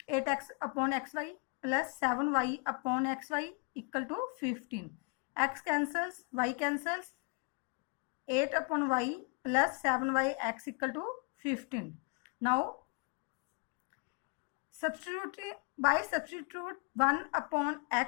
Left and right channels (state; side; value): quieter; right; 34.6 dB